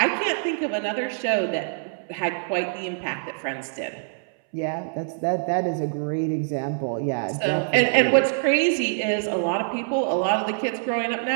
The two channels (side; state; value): left; silent; 62 dB below the other